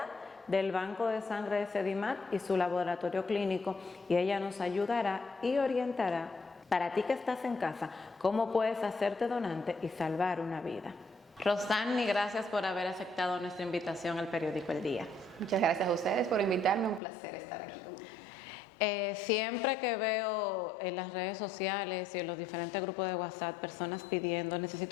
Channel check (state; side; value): drops out; right; at 17.0 s